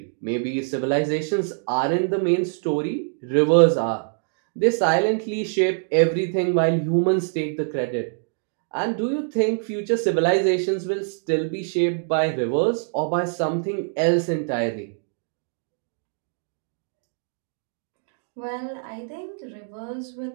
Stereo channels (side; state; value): left; silent; digital silence